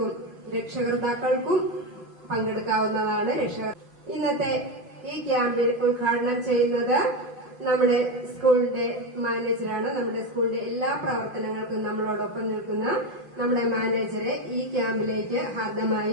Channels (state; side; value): late; left; 5.7 ms